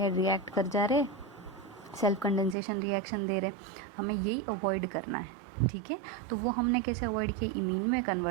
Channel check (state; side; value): drops out; left; at 2.6 s